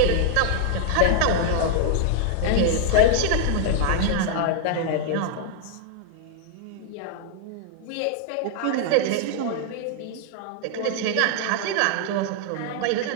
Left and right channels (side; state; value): both; different; correlation 0.00